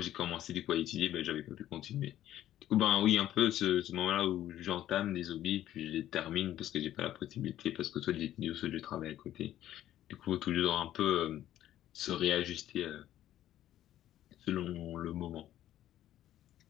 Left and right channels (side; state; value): right; quieter; 12.6 dB